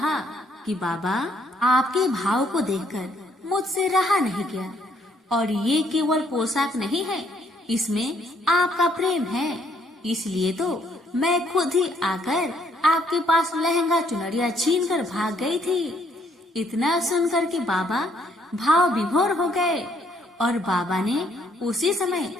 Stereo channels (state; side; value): normal; both; correlation 0.68